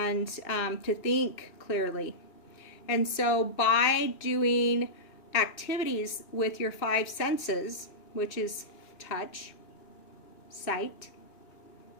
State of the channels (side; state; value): right; late; 2.6 ms